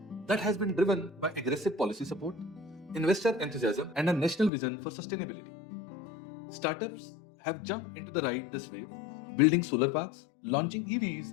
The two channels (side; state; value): right; drops out; at 4.5 s